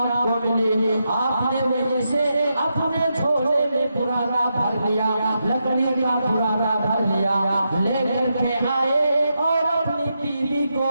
کو ملی، آپ نے وہیں سے اپنے جھولے میں پرانا بھر لیا، لکڑی کا پرانا بھر لیا، لے کر کے آئے اور اپنی بیوی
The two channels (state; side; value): inverted; both; correlation -0.84